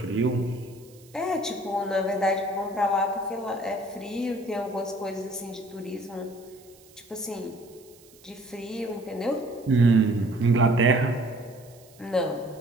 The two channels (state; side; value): noise; right; hiss, 26 dB below the sound